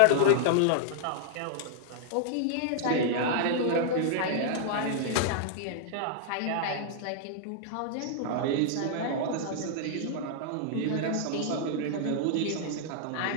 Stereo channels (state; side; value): different; both; correlation -0.01